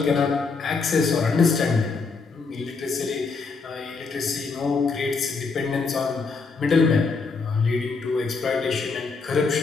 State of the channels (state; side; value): quieter; right; 4.5 dB